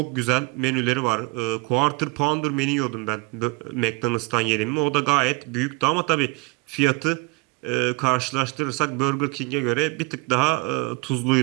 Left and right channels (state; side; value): quieter; left; 27.1 dB